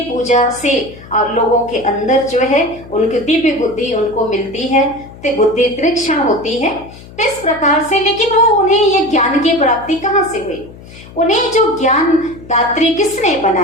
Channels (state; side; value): noise; left; hum, 19 dB below the sound